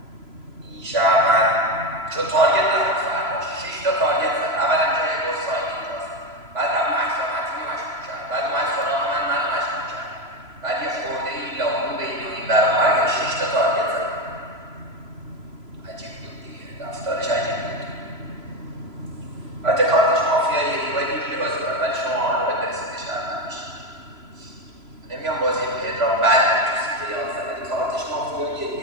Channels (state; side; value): late; left; 3.0 ms